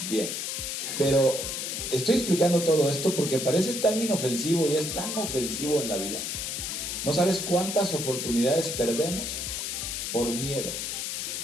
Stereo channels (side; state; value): left; noise; hiss, 3 dB below the sound